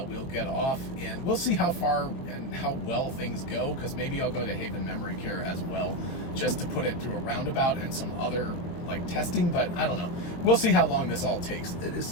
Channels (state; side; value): late; right; 23 ms